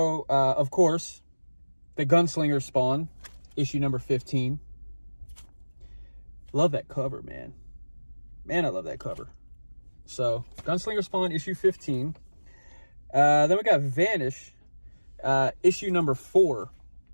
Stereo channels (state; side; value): inverted; both; correlation -1.00